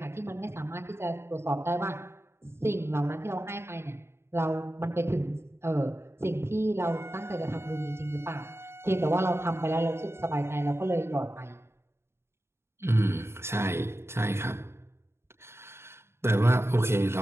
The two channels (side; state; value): left; late; 0.12 ms